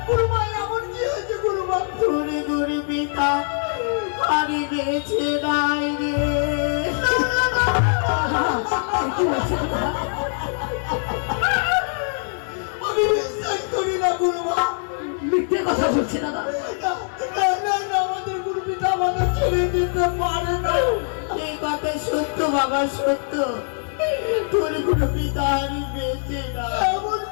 গুরু মা এমন কি হয়েছে গুরু মা? তোরে গরে পিতা আরে বেঁচে নাই রে। কি হচ্ছে দাদা? আমি বিশ্বাস করি না গুরু মা। মিথ্যে কথা বলছে দাদা। আমাদের গুরু পিতা আমাদের ছেড়ে দিতে পারে না। এই কথা সত্য বাবা, সত্য। তোর গুরু পিতা আরে বেঁচে নাই। এমন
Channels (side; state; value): right; silent; 64 dB below the other